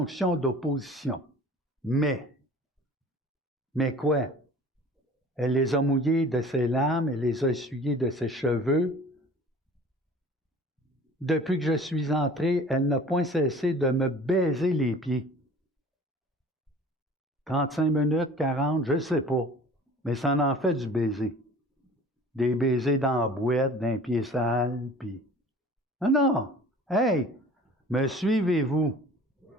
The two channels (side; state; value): both; normal; correlation 0.46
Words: d'opposition. Mais quoi? Elle les a mouillés de ses larmes, elle les a essuyés de ses cheveux. Depuis que je suis entré, elle n'a point cessé de me baiser les pieds. 35 minutes, 40, je ne sais pas. Mais ça en fait du baiser. Des baisers dans la boîte, d'un pied sale, puis... Non, non! Hey! Me suivez-vous?